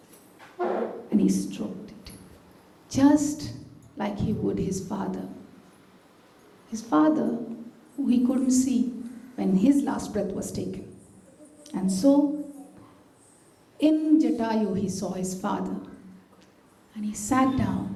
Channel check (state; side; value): identical; both; correlation 1.00